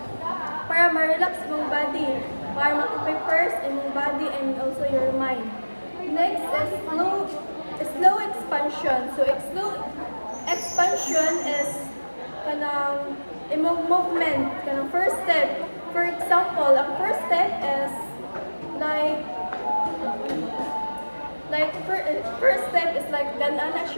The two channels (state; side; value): inverted; both; correlation -1.00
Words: para ma-relax imong body, para ma-prepare imong body and also your mind. Next is slow expansion. So slow expansion is kanang imong movement, kanang first step. For example, ang first step is first step is like ganana